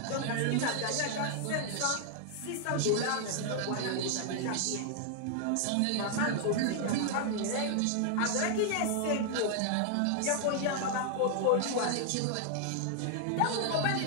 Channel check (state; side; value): different; both; correlation 0.00